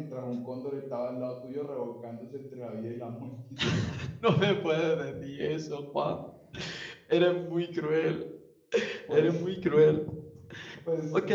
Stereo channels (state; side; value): identical; both; correlation 1.00